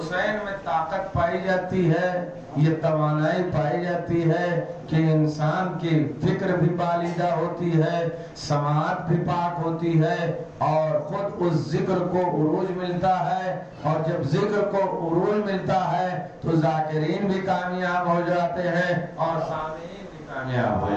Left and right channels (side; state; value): both; identical; correlation 1.00